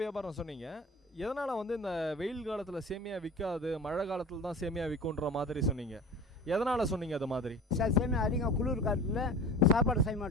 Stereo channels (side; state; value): both; normal; correlation 0.38